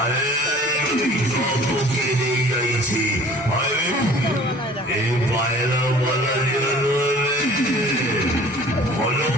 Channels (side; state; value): both; normal; correlation 0.48